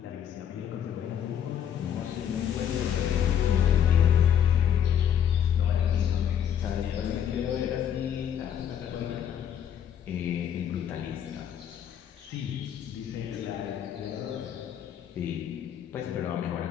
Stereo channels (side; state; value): right; quieter; 9.2 dB